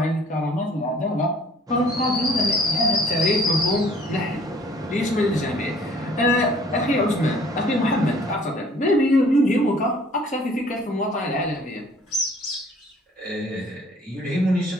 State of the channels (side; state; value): both; normal; correlation 0.55